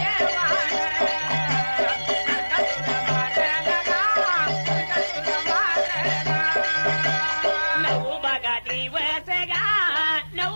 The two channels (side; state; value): both; inverted; correlation -1.00